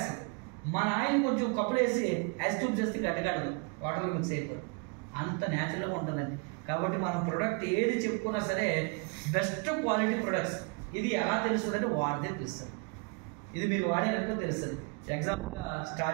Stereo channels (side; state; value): left; quieter; 32.7 dB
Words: మన ఆయిల్ కొంచెం కప్పులు వేసి ఐస్ క్యూబ్స్ వేస్తే గడ్డగడదు, వాటర్లో మిక్స్ అయిపోతుంది. అంత న్యాచురల్గా ఉంటుందండి. కాబట్టి మనం ప్రొడక్ట్ ఏది చెప్పుకున్నా సరే బెస్ట్ క్వాలిటీ ప్రొడక్ట్స్. ఇది ఎలా తెలుస్తుంది అంటే వాడితే తెలుస్తుంది. ఇది మీరు వాడేందుకు తెలుస్తుంది. ఎగ్జాంపుల్గా